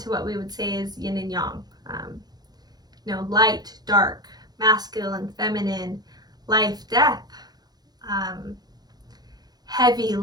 what we would say is yin and yang. Light, dark, masculine, feminine, life, death, heavy,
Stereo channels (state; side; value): late; left; 0.19 ms